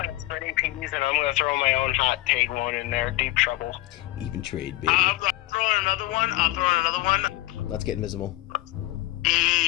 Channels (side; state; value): right; quieter; 17.8 dB